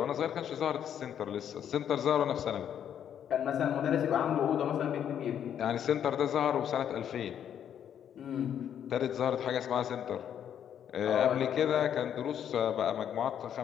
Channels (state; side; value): quieter; right; 9.3 dB